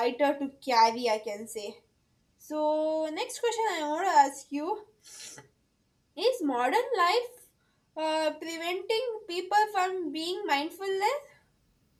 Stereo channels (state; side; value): identical; both; correlation 1.00